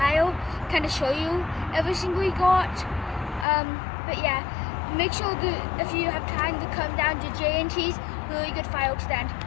kind of show you everything we got. But yeah, make sure that if you have time to come down to J&T's, really good fireworks stand.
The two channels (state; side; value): drops out; right; at 3.5 s